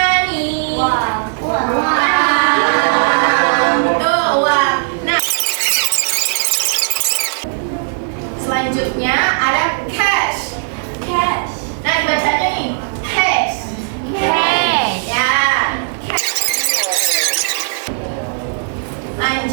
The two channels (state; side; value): silent; left; 66 dB below the other